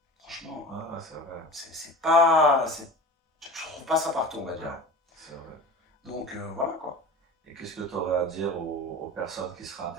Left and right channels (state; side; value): normal; both; correlation 0.33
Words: franchement, c'est pas... Je trouve pas ça partout, on va dire. C'est vrai. Donc voilà quoi. Et qu'est-ce que tu aurais à dire aux personnes qui seraient